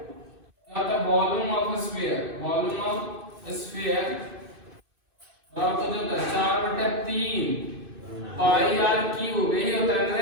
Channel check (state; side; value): late; left; 2.6 ms